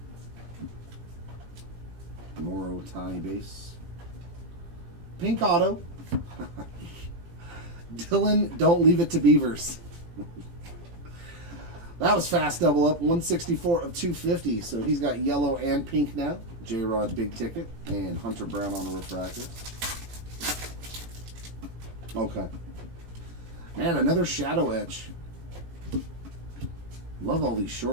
More Otani base. Pink auto. Dylan, don't leave it to Beavers. That was fast double up, 164 of 250. So he's got yellow and pink now. J-Rod big ticket and Hunter Brown on a refractor. Okay. Man, another shadow etch. Love all these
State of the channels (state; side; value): late; left; 18 ms